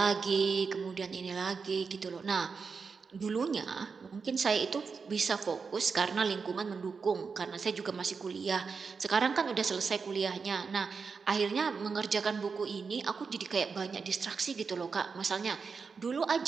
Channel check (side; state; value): left; quieter; 5.2 dB